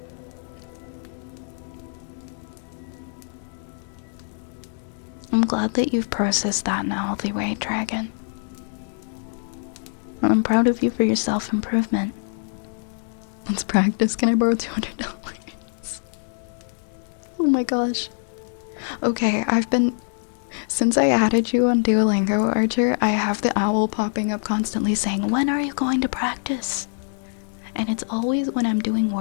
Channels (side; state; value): right; silent; digital silence